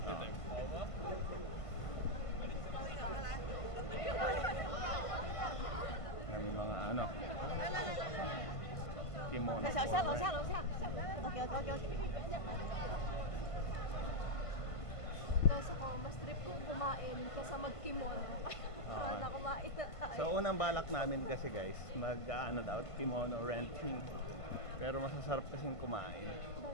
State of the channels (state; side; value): late; right; 1.5 ms